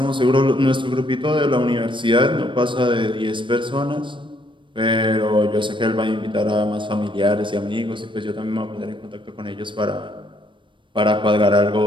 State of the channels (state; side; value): late; left; 0.24 ms